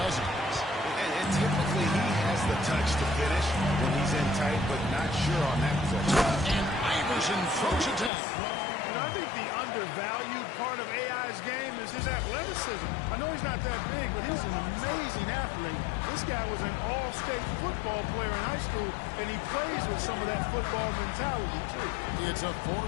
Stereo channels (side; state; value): right; drops out; at 8.1 s